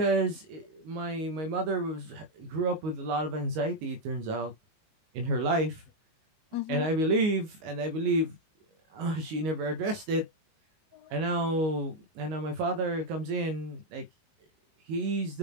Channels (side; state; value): left; late; 19 ms